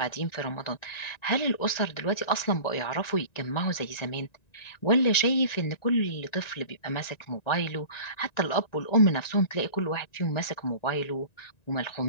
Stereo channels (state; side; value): late; right; 1.9 ms